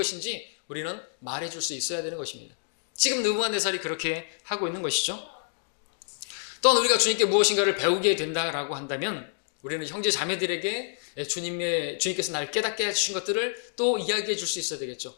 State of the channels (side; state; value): right; silent; digital silence